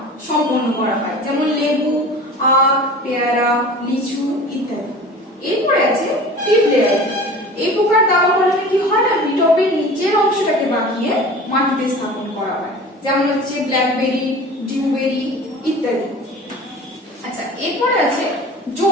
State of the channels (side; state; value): both; normal; correlation 0.39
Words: সম্পন্ন করা হয়, যেমন লেবু, আখ, পেয়ারা, লিচু ইত্যাদি। এরপরে আছে টিপ লেয়ারিং। এই প্রকার দাবা কলমে কি হয় না, বিটপের নিচের অংশটাকে বাঁকিয়ে মাটিতে স্থাপন করা হয়, যেমন হচ্ছে ব্ল্যাকবেরি, ডিউবেরি ইত্যাদি। আচ্ছা, এরপরে আছে